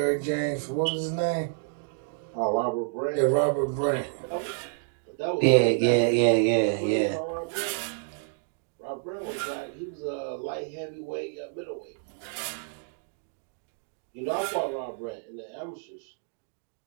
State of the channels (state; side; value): silent; left; digital silence